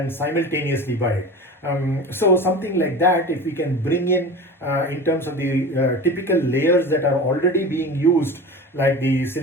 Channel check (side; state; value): both; normal; correlation 0.33